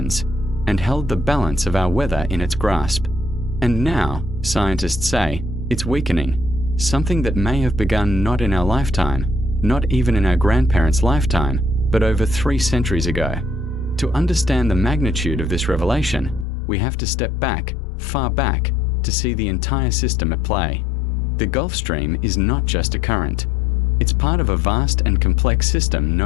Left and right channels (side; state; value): right; drops out; at 16.4 s